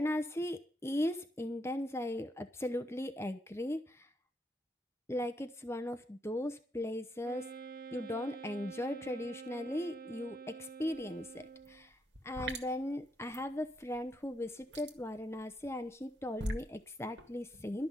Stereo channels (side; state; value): both; normal; correlation 0.78